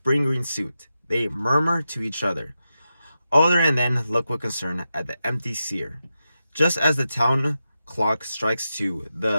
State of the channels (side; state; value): both; inverted; correlation -0.90